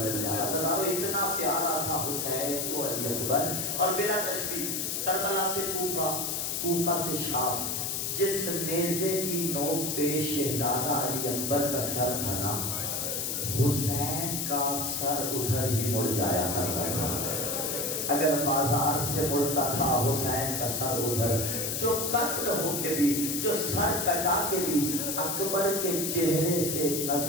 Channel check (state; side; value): noise; left; hiss, 1 dB below the sound